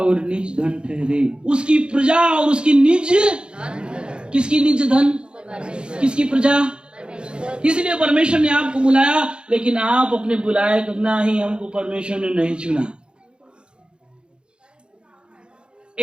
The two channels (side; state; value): left; late; 0.053 ms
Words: निज धन ठहरे। उसकी प्रजा और उसकी निज, किसकी निज धन, किसकी प्रजा। इसलिए परमेश्वर ने आपको बुलाया, लेकिन आप अपने बुलाए तो ना ही हमको परमेश्वर ने नहीं चुना।